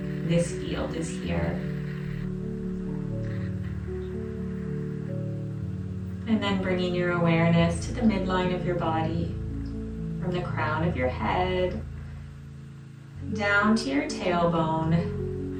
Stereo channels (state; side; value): identical; both; correlation 1.00